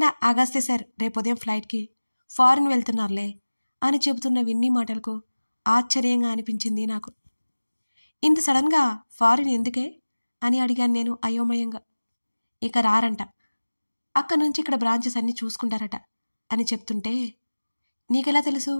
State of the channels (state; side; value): inverted; both; correlation -1.00